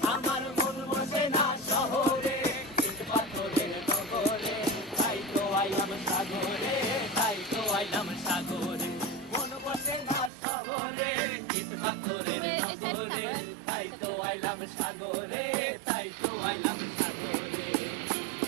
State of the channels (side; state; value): left; drops out; at 10.3 s